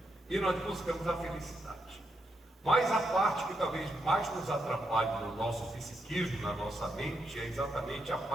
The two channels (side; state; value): both; normal; correlation 0.81